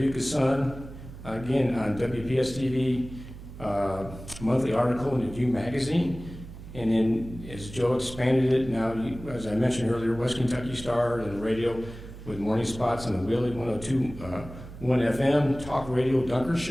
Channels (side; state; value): right; noise; hum, 14 dB below the sound